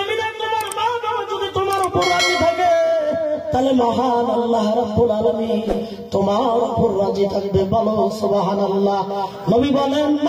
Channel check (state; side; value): identical; both; correlation 1.00